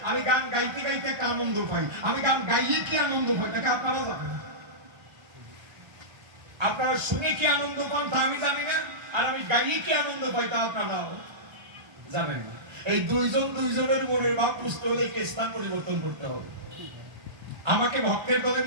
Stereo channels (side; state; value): left; late; 1.0 ms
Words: আমি গান গাইতে গাইতে একটা আনন্দ পাই। আমি গান গাইয়ে কি আনন্দ পাই তাকে আপনারা জানেন? আপনারা শুনে কি আনন্দ পান তা আমি জানি না, আর আমি গাইয়ে কি আনন্দ পাই তা আপনারাও জানেন না। এই দুইজনের মনের ভাব বুঝতে হলে স্থান পরিবর্তন করতে হবে। আমাকে ভক্তের দলে